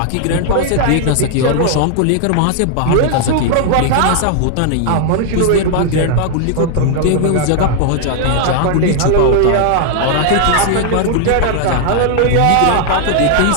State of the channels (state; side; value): different; both; correlation 0.00